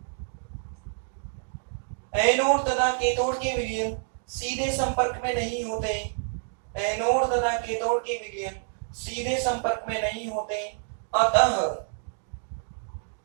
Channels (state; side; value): silent; left; digital silence